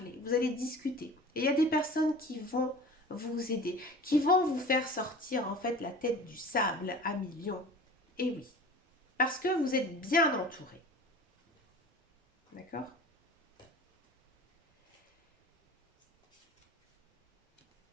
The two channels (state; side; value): normal; both; correlation 0.40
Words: vous allez discuter. Et il y a des personnes qui vont vous aider, qui vont vous faire sortir en fait la tête du sable à millions. Et oui, parce que vous êtes bien entouré. D'accord?